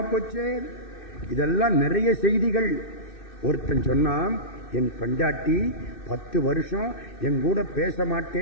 போச்சு. இதெல்லாம் நிறைய செய்திகள். ஒருத்தன் சொன்னான், என் பெண்டாட்டி 10 வருஷம் என் கூட பேச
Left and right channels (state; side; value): late; right; 2.6 ms